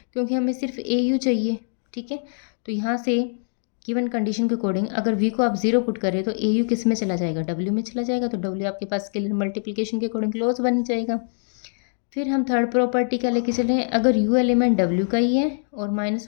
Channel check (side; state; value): right; silent; digital silence